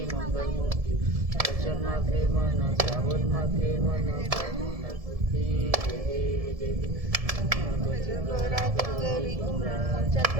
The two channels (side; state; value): left; late; 1.7 ms